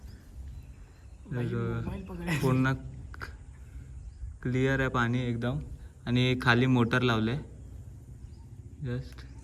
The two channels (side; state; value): both; identical; correlation 1.00